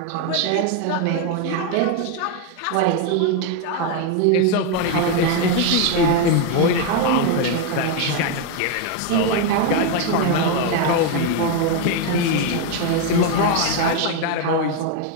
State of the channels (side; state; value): both; different; correlation 0.01